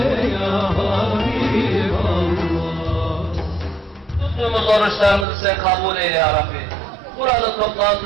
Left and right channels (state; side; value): drops out; left; at 5.2 s